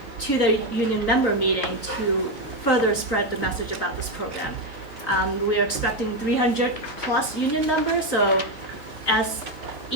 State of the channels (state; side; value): normal; both; correlation 0.08